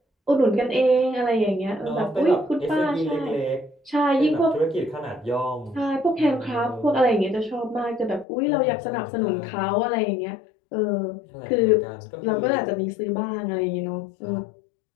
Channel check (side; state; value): right; drops out; at 8.2 s